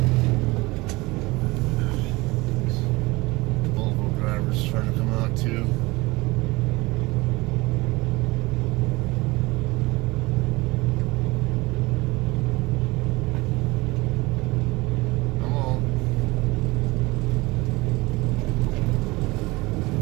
Volvo drivers trying to come out too.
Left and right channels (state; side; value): quieter; left; 22.4 dB